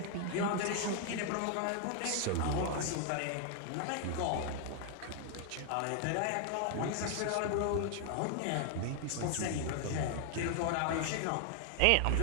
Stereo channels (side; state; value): both; different; correlation 0.00